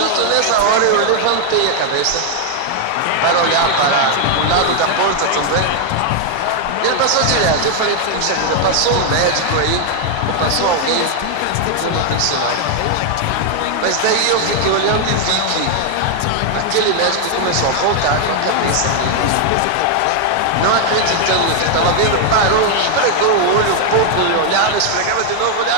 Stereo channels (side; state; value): both; different; correlation 0.00